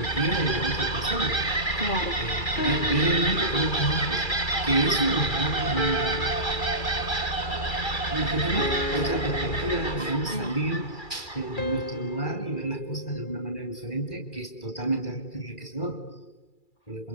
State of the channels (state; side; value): late; right; 2.3 ms